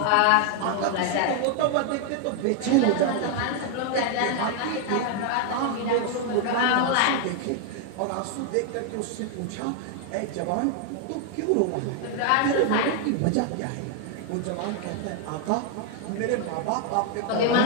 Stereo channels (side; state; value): both; different; correlation 0.00